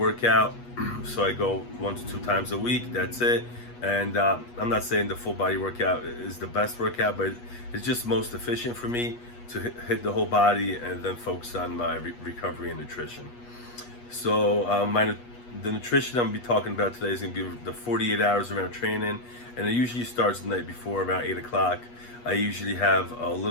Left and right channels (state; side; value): late; right; 8.3 ms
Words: So I go 1 to 2 times a week, that's it. And I'm not saying the full body workout is the best workout, but it's just most efficient for me to hit the whole body and then focus on my recovery and nutrition. So the nutrition I'm gonna be talking about today is gonna be the 48 hours around training, and it usually starts the night before around 8 o'clock. I usually have a